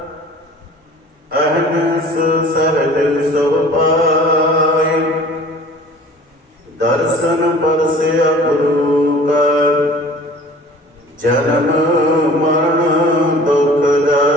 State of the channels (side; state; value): both; normal; correlation 0.46